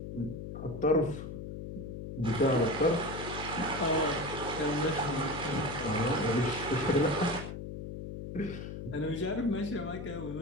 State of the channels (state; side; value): noise; left; hum, 8 dB below the sound